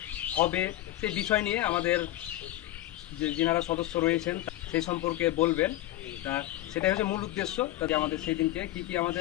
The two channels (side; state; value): right; quieter; 15.3 dB